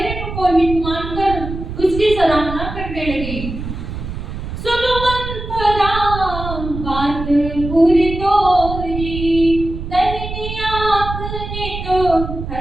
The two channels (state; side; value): noise; right; rumble, 7 dB below the sound